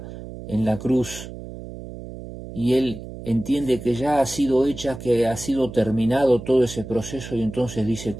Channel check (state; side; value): noise; right; hum, 12 dB below the sound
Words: en la cruz, y él entiende que ya ha sido hecha, que ha sido terminado todo ese proceso, y entonces dice: